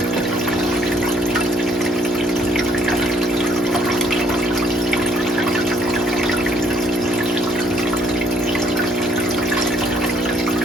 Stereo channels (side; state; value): both; normal; correlation 0.66